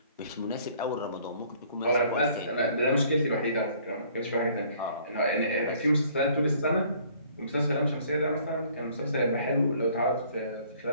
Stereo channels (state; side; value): inverted; both; correlation -0.59